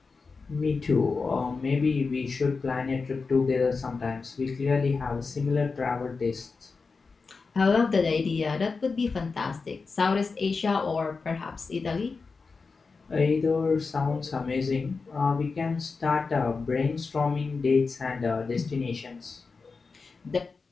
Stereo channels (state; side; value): quieter; right; 4.5 dB